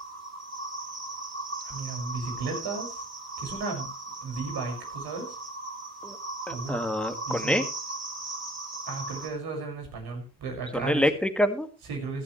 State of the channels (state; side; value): normal; both; correlation 0.57